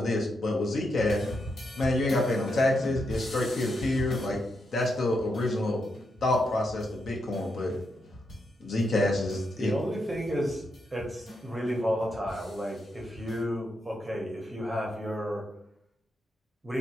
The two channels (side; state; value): both; normal; correlation 0.82